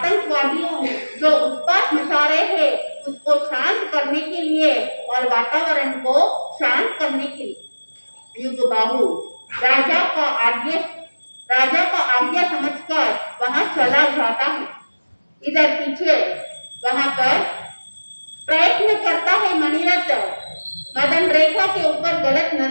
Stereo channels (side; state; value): both; inverted; correlation -1.00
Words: जो उत्पात मचा रहे हैं उसको शांत करने के लिए और वातावरण को शांत करने के लिए युगबाहु राजा का आज्ञा समझकर वहां चला जाता है। इधर पीछे वहां पर प्रयत्न करता है मणिरथ, मदन रेखा के ऊपर गलत